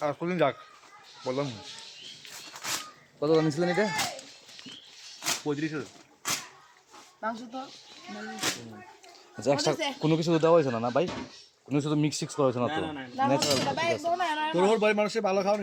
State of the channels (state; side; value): identical; both; correlation 1.00